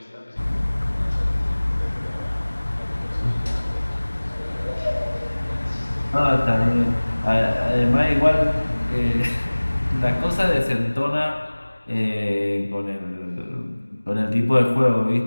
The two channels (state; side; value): inverted; both; correlation -1.00